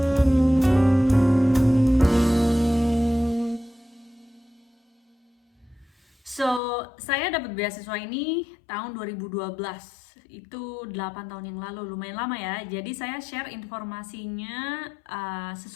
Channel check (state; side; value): drops out; right; at 6.6 s